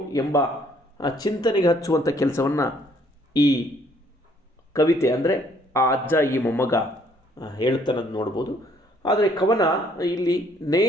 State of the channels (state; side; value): normal; both; correlation 0.64